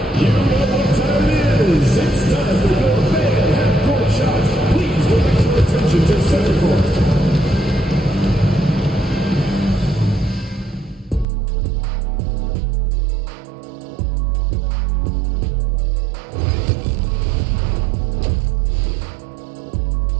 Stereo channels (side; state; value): left; drops out; at 11.2 s